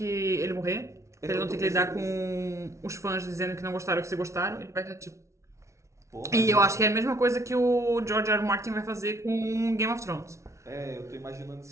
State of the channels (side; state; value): left; late; 0.14 ms